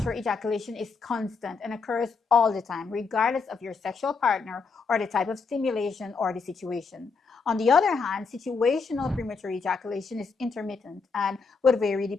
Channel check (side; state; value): right; quieter; 4.8 dB